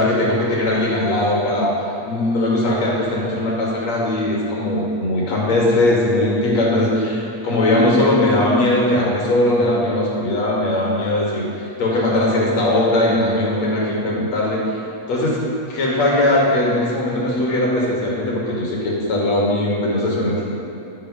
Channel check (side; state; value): right; late; 8.5 ms